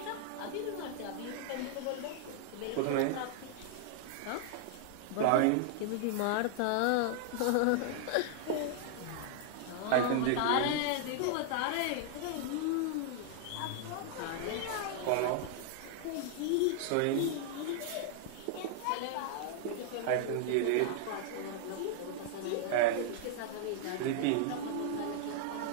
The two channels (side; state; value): both; different; correlation -0.01